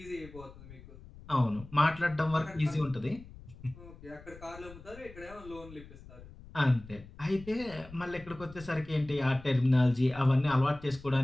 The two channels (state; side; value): noise; left; rumble, 18 dB below the sound